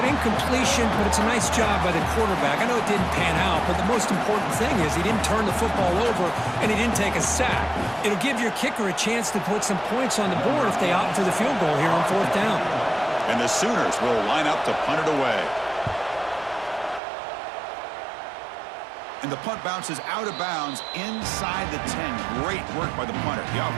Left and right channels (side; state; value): left; drops out; at 17.0 s